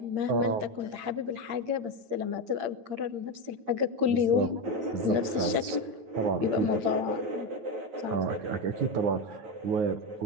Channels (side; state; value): left; late; 8.7 ms